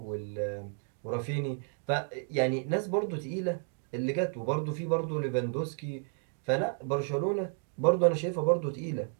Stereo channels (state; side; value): silent; left; 57 dB below the other